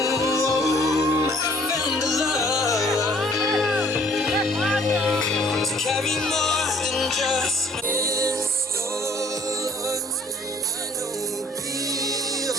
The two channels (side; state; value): both; normal; correlation 0.56